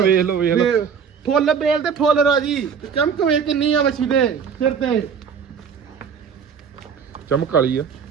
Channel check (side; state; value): left; quieter; 6.7 dB